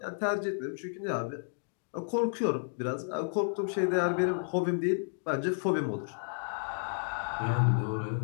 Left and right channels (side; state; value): right; silent; digital silence